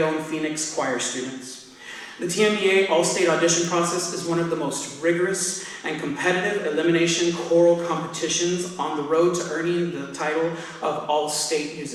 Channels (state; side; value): identical; both; correlation 1.00